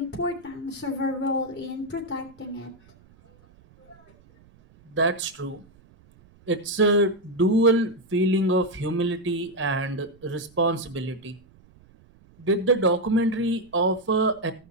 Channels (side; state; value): right; noise; rumble, 28 dB below the sound